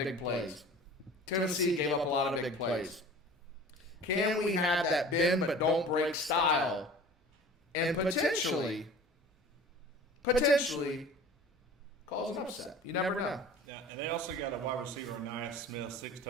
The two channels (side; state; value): both; normal; correlation 0.42